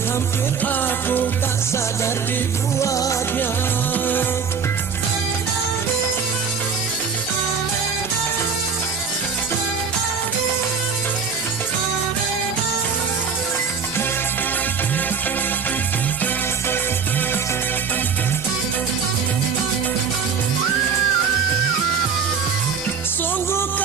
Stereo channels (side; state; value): left; quieter; 6.1 dB